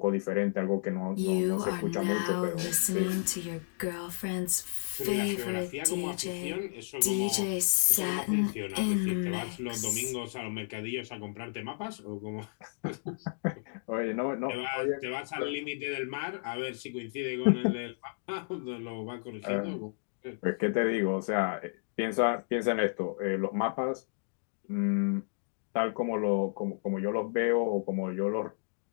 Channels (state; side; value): silent; right; digital silence